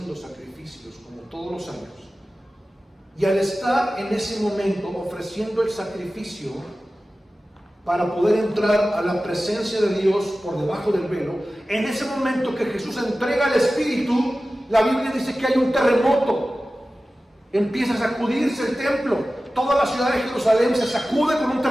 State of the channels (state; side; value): normal; both; correlation 0.95